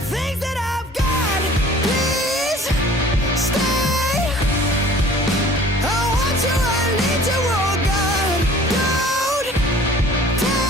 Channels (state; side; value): normal; both; correlation 0.49